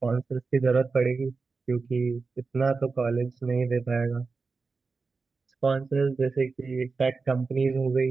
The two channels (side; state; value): left; quieter; 4.4 dB